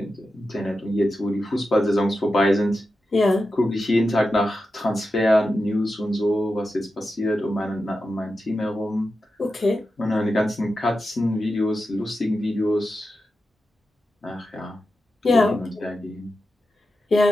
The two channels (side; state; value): both; normal; correlation 0.90